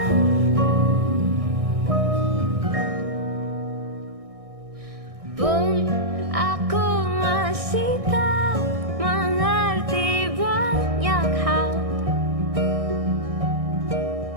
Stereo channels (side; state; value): left; late; 1.6 ms